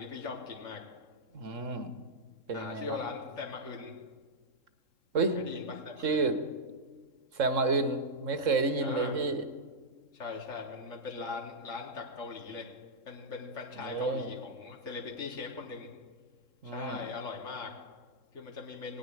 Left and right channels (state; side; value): late; left; 3.7 ms